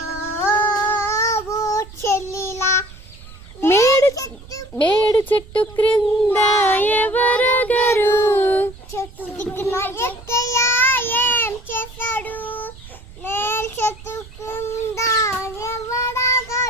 చెల్లిలా. మేడు చెట్టు క్రింద ఎవరగరు, చెట్టు దిక్కున ఎక్కయ్య ఏం చేశాడు, మేల్ చెట్టు కింద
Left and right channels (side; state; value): right; noise; rumble, 18 dB below the sound